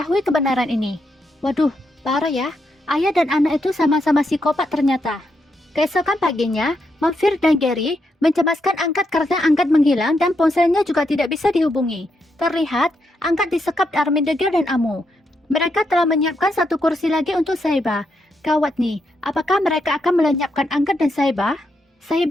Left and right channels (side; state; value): both; normal; correlation 0.81